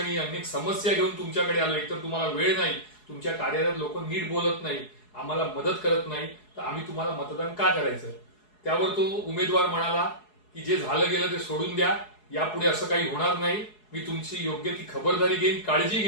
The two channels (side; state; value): right; late; 4.7 ms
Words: अनेक समस्या घेऊन तुमच्याकडे आलो. एकतर तुम्हाला वेळ नाही, तुमच्या कार्यालयात लोक नीट बोलत नाही, आम्हाला मदत करत नाही, तर आम्ही तुम्हाला मतदान का करायचं. त्यावर तो उमेदवार म्हणाला की जे झालं गेलं ते सोडून द्या, यापुढे असं काही होणार नाही, मी तुमची योग्य ती खबरदारी घेईन, काळजी